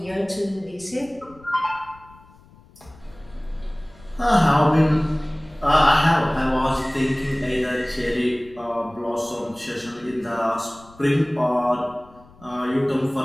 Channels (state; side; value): noise; left; rumble, 25 dB below the sound